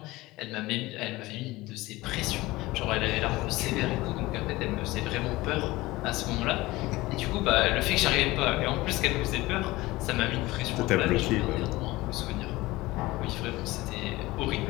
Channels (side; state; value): right; quieter; 19.7 dB